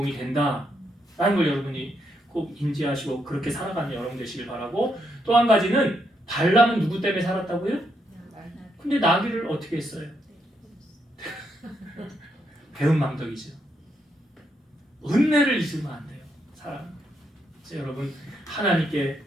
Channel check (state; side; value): normal; both; correlation 0.78